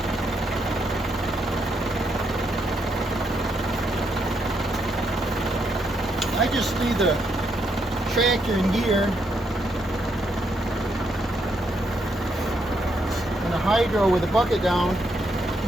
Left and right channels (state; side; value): normal; both; correlation 0.77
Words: I just leave the tractor in gear and the hydro with the bucket down